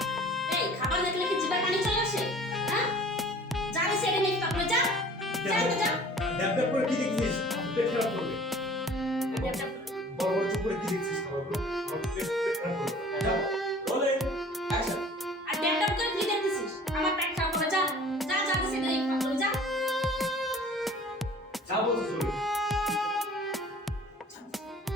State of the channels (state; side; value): normal; both; correlation 0.48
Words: এই খাবার দেখলে কি জিভে পানি চলে আসে হ্যাঁ জানি সেটা নিয়ে তারপর যা যা তো যা ড্যাব ড্যাব করে কি দেখছিস? পেট খারাপ করবে। বড় বড় চুপ করে কি দেখছিস খাবারগুলো? পেট খারাপ করবে। যাও। Rolling action. আর ড্যাপ করে কি দেখতেছিস আমার পেট খারাপ করে যা যা জানি সেটা নিয়ে তারপর যা যা বলছিস বলো।